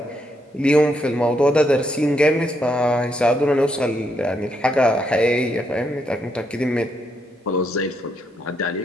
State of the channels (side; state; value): both; normal; correlation 0.77